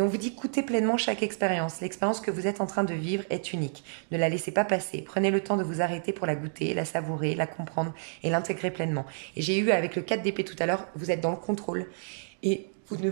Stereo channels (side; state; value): left; silent; digital silence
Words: vous dit, goûtez pleinement chaque expérience. L'expérience que vous êtes en train de vivre est unique. Ne la laissez pas passer. Prenez le temps de vous arrêter pour la goûter, la savourer, la comprendre et l'intégrer pleinement. Et j'ai eu avec le 4 d'épée tout à l'heure, vous êtes dans le contrôle et vous ne